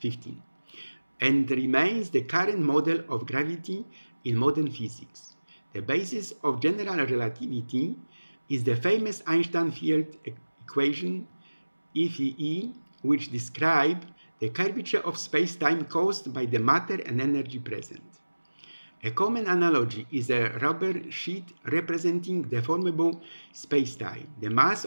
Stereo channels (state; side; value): inverted; both; correlation -1.00